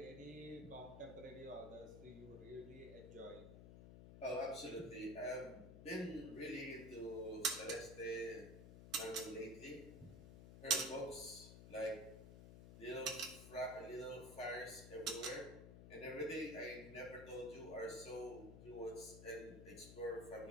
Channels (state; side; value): noise; left; hum, 11 dB below the sound